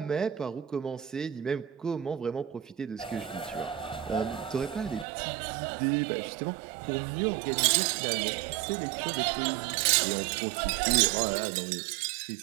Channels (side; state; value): left; drops out; at 5.1 s